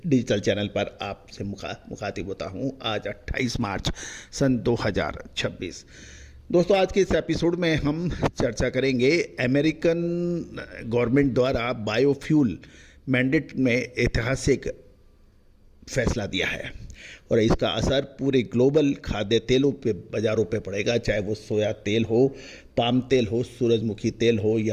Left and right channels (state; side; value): identical; both; correlation 1.00